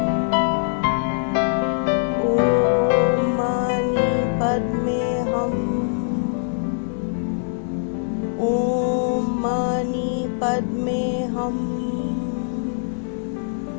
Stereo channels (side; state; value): right; silent; digital silence